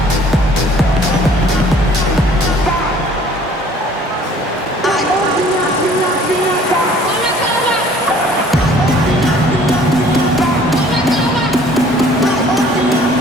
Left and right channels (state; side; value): normal; both; correlation 0.54